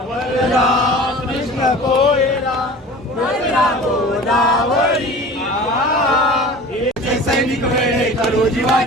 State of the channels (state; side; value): normal; both; correlation 0.39